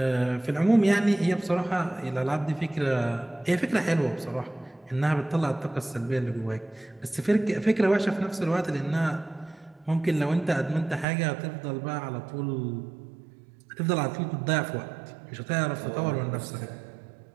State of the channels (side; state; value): left; drops out; at 11.1 s